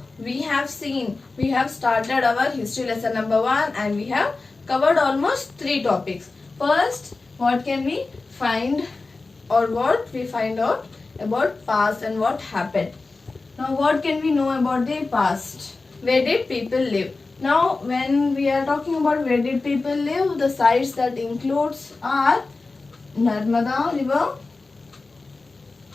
we have started our history lesson number 1 and we have covered almost 3 topics. First, what can we find or what we find out about past and what happened. Now what can we know about the past? Where did people live? Now when we are talking about where did people live, the sites that includes are Narmada river,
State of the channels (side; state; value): right; quieter; 3.7 dB